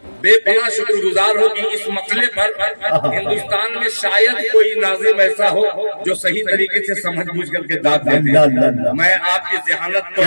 बेपनाह शुक्रगुजार हूँ कि इस मसले पर हिंदुस्तान में शायद कोई नाज़िम ऐसा हो जो सही तरीके से समझ बूझ करके दाद दे। मैं आपकी ज़हानत को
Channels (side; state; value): both; inverted; correlation -1.00